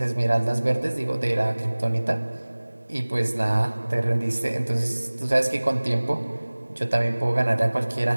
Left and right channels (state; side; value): inverted; both; correlation -1.00